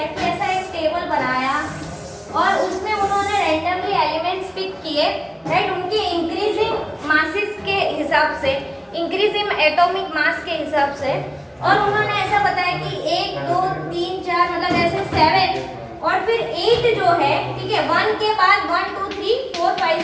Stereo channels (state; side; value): identical; both; correlation 1.00